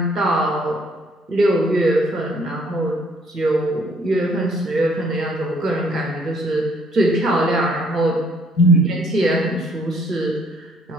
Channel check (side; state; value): both; normal; correlation 0.64